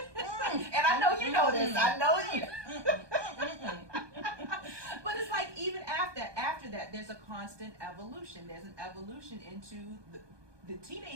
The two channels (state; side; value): late; left; 1.2 ms